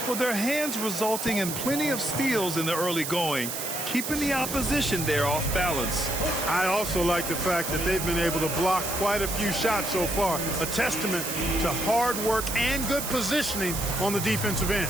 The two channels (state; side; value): noise; right; hiss, 5 dB below the sound